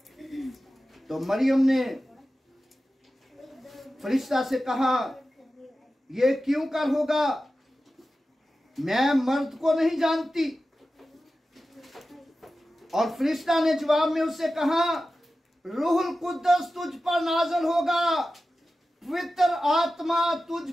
तो मरियम ने फरिश्ता से कहा, ये क्यों कर होगा, मैं मर्द को नहीं जानती। और फरिश्ता ने जवाब में उससे कहा, रूहुल कुद्दस तुझ पर नाज़िल होगा, पवित्र आत्मा तुझ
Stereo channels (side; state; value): both; normal; correlation 0.94